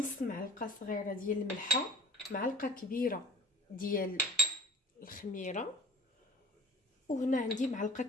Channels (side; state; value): both; normal; correlation 0.44